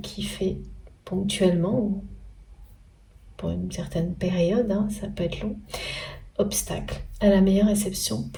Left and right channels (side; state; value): both; identical; correlation 1.00